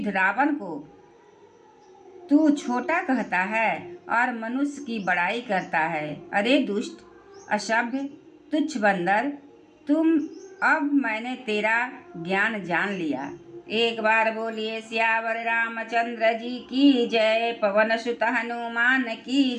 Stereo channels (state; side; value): identical; both; correlation 1.00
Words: रावण को तू छोटा कहता है और मनुष्य की बड़ाई करता है। अरे दुष्ट, असभ्य, तुच्छ बंदर, अब मैंने तेरा ज्ञान जान लिया। एक बार बोलिए सियावर रामचंद्र जी की जय। पवन सुत हनुमान